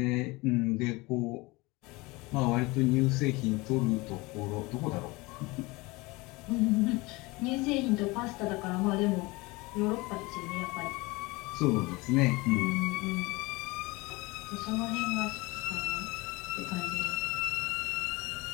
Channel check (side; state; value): right; quieter; 23.4 dB